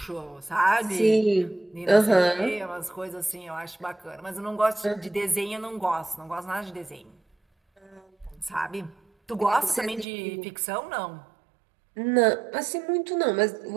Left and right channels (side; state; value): left; drops out; at 10.1 s